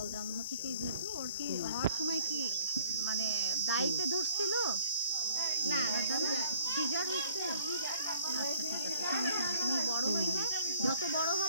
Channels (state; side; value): inverted; both; correlation -0.57